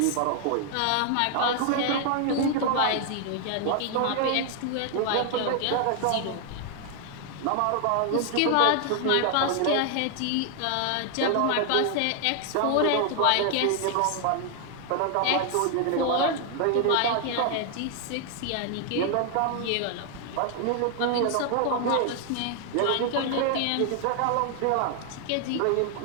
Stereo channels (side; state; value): both; different; correlation 0.00